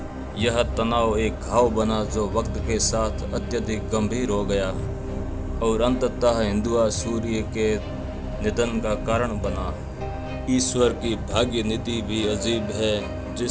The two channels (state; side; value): identical; both; correlation 1.00